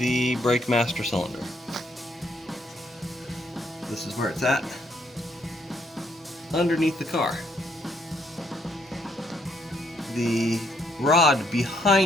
brake master cylinder. This is where it's at, underneath the car. The rod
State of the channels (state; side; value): normal; both; correlation 0.72